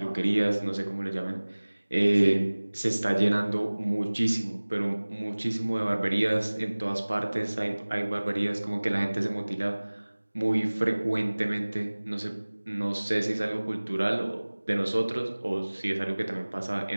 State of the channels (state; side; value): inverted; both; correlation -1.00